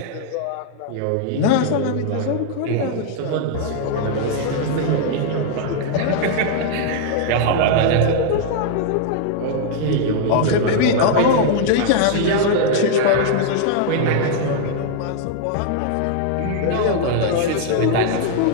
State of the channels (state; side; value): different; both; correlation 0.00